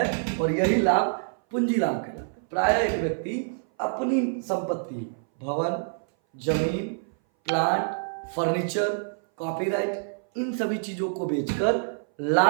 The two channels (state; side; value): silent; left; 59 dB below the other